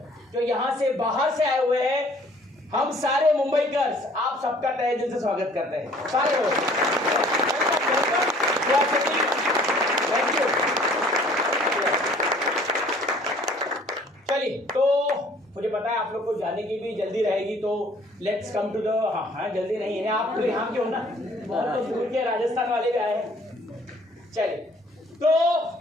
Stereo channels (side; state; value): both; normal; correlation 0.55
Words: जो यहाँ से बाहर से आए हुए हैं, हम सारे मुंबईकर्स आप सबका तहे दिल से स्वागत करते हैं, सारे लोग। Thank you. चलिए, तो मुझे पता है आप लोग को जाने की भी जल्दी रहेगी, तो लेट्स कम टू द हाँ जल्दी नहीं है, आप तो यहाँ के हो ना, बहुत तो दूर के राजस्थान वाले भी आए हैं। चलिए, तो